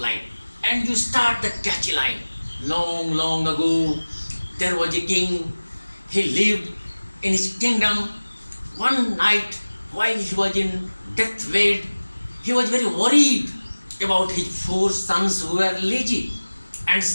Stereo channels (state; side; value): inverted; both; correlation -1.00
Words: and you start the catchy line. Long, long ago, there was a king. He lived in his kingdom. One night, while he was in deathbed, he was very worried about his 4 sons who were lazy. And